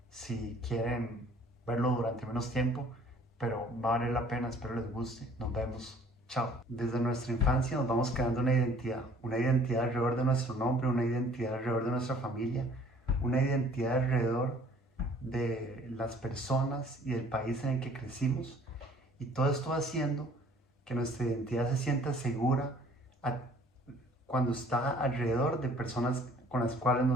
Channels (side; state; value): both; normal; correlation 0.55